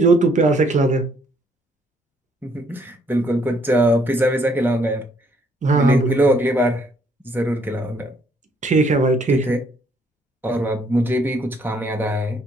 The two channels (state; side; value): normal; both; correlation 0.67